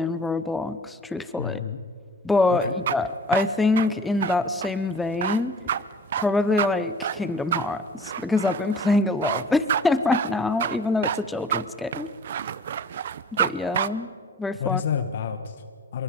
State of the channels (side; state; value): both; normal; correlation 0.45